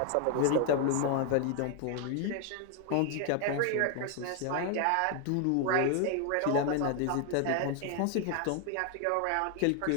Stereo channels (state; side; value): different; both; correlation 0.00